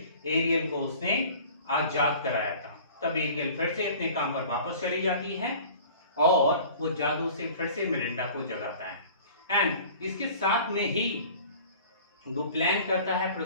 एरियल को उसने आजाद कराया था। तब एरियल फिर से अपने काम पर वापस चली जाती है और वो जादू से फिर से मिरिंडा को जगाता है। एंड इसके साथ में ही वो प्लान करता है,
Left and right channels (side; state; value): both; inverted; correlation -0.45